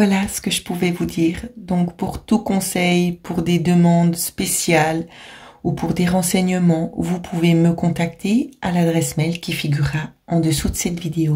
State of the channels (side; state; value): both; identical; correlation 1.00